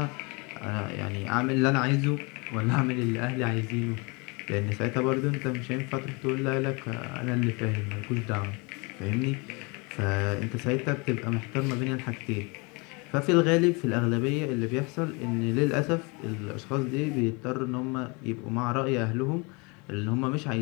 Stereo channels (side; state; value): right; quieter; 29.1 dB